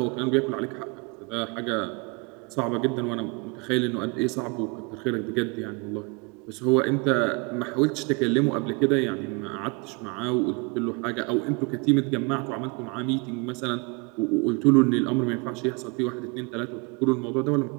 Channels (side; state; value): left; quieter; 30.4 dB